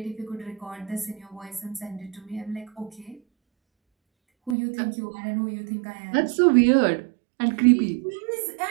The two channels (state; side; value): drops out; left; at 4.5 s